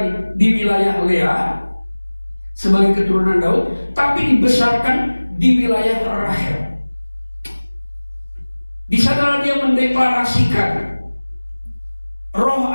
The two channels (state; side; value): inverted; both; correlation -1.00